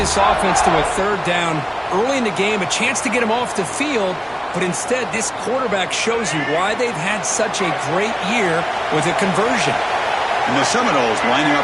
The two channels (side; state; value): both; identical; correlation 1.00